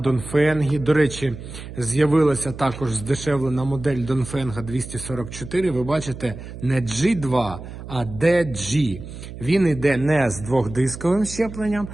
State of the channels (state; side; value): noise; right; hum, 12 dB below the sound